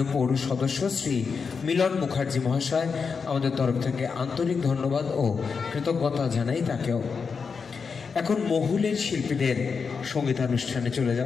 পৌর সদস্য শ্রী মিলন মুখার্জি মহাশয়। আমাদের তরফ থেকে আন্তরিক ধন্যবাদ ও কৃতজ্ঞতা জানাই তাকেও। এখন মহুলের শিল্পীদের সঙ্গীতানুষ্ঠানে চলে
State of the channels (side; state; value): right; quieter; 5.5 dB